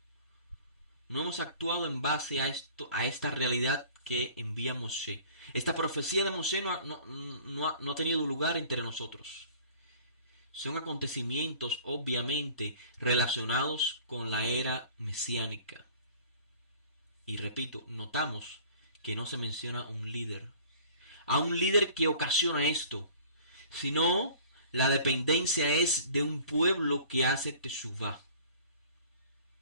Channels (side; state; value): both; inverted; correlation -0.49